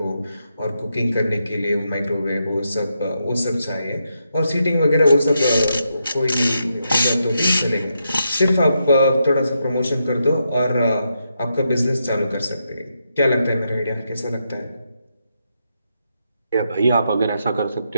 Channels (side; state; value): both; inverted; correlation -0.82